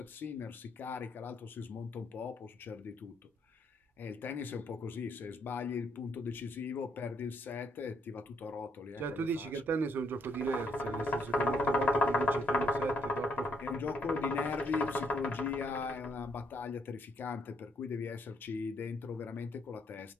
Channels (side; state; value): both; normal; correlation 0.72